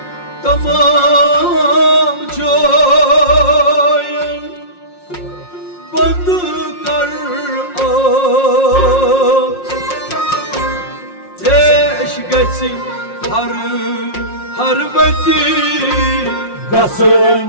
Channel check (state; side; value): late; right; 5.6 ms